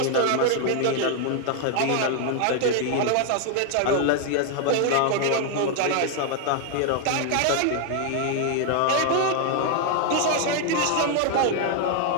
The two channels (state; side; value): different; both; correlation 0.00